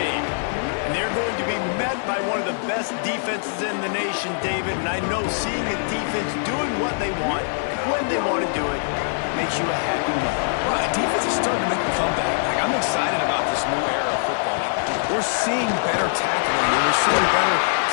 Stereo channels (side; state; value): right; silent; digital silence